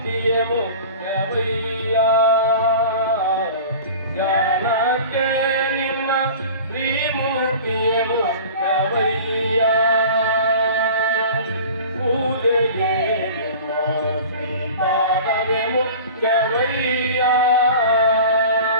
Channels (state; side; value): inverted; both; correlation -0.39